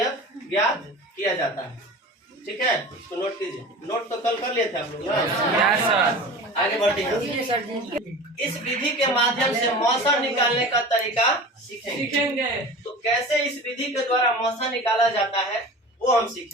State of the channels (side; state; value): both; normal; correlation 0.36